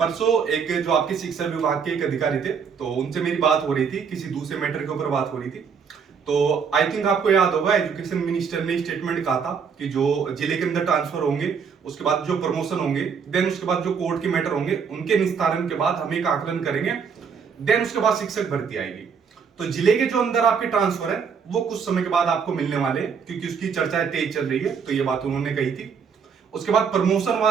एक जो आपके शिक्षा विभाग के एक अधिकारी थे, तो उनसे मेरी बात हो रही थी, किसी दूसरे मैटर के ऊपर बात हो रही थी। तो आई थिंक आपको याद होगा, एजुकेशन मिनिस्टर ने स्टेटमेंट कहा था कि जो जिले के अंदर ट्रांसफर होंगे, उसके बाद जो प्रमोशन होंगे, देन उसके बाद जो कोर्ट के मैटर होंगे, उनके निस्तारण के बाद हम एक आकलन करेंगे, देन उसके बाद शिक्षक भर्ती आएगी। तो जिले के जो अंदर आपके ट्रांसफर है वो कुछ समय के बाद आपको मिलने वाले हैं, क्योंकि उसकी चर्चाएं तेज चल रही है। तो ये बात उन्होंने कही थी। उसके बाद प्रमोशन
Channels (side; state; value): left; quieter; 6.4 dB